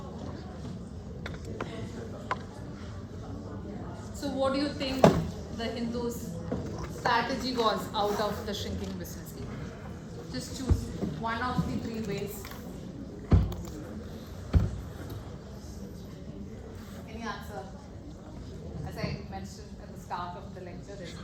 So what do you think the Hindus' strategy was out of the shrinking business? Just choose one of the 3 ways. Any answer? As I mentioned at the start of the lecture, there's no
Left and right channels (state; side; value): identical; both; correlation 1.00